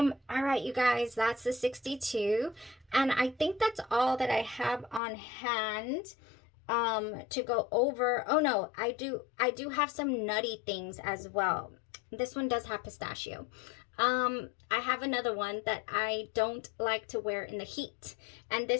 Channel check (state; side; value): drops out; right; at 5.0 s